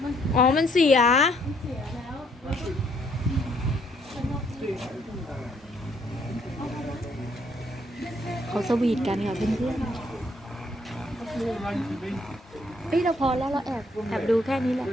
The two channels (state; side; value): normal; both; correlation 0.68